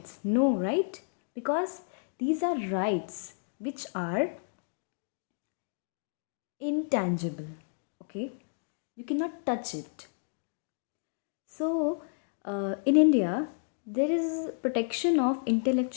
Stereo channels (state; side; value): silent; right; digital silence